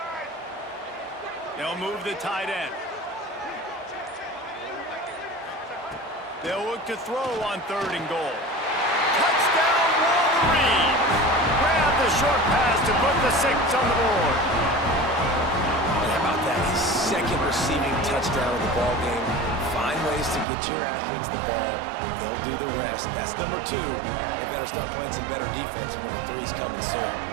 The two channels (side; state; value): left; drops out; at 20.5 s